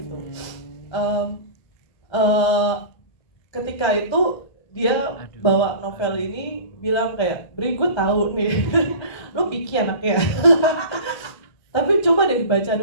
Ketika itu dia bawa novel ini bilang kayak, Bri gue tahu nih, lo picky anaknya. Tapi coba deh baca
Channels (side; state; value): right; late; 1.3 ms